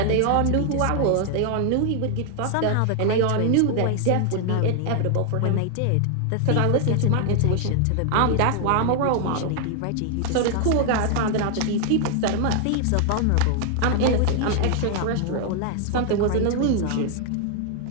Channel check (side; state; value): both; different; correlation 0.00